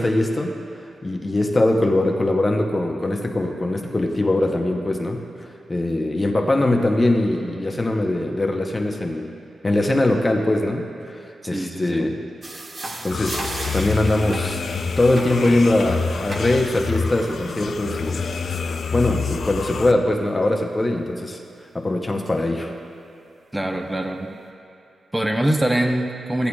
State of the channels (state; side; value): normal; both; correlation 0.94